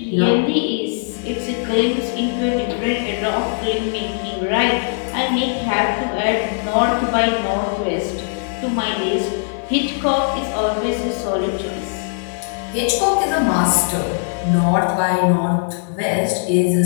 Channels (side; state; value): right; silent; digital silence